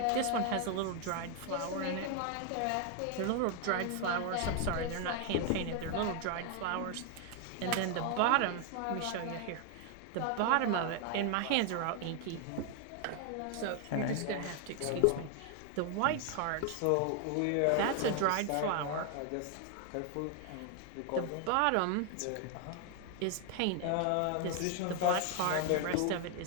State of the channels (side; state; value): both; different; correlation 0.00